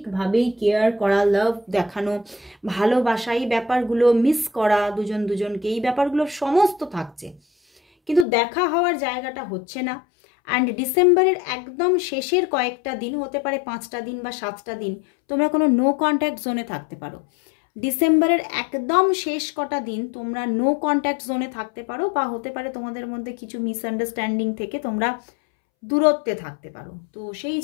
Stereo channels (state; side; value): drops out; right; at 8.2 s